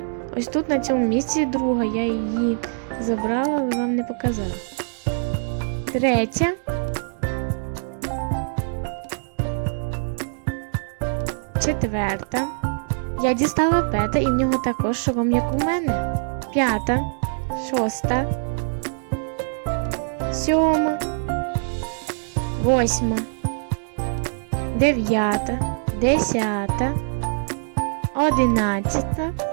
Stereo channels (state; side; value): silent; left; digital silence